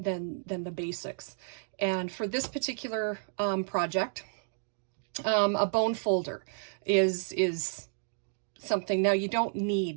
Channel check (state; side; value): silent; left; digital silence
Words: basics. And for this particular project, a bone folder is something. Now, you don't